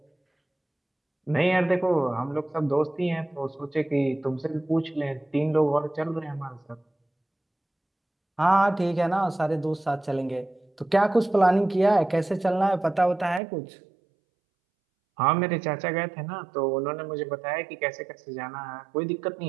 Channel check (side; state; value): left; drops out; at 13.4 s